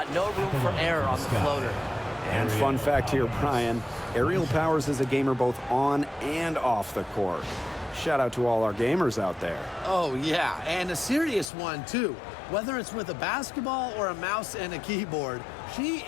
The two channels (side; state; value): right; drops out; at 11.5 s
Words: No room for error on the floater. And fun fact here, Brian, Aerial Powers is a gamer both on and off the court. Shout out to all our gamers out there. Oh, yeah, and a serious one, too. Whether it's with a basketball or a mouse and a keyboard, she